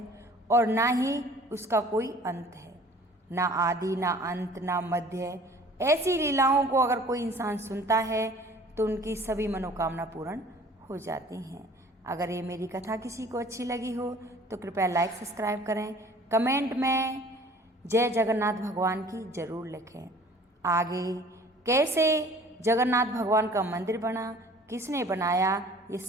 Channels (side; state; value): both; normal; correlation 0.50